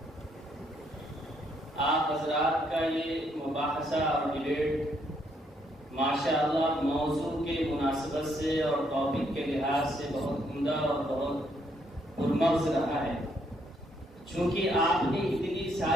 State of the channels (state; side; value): normal; both; correlation 0.72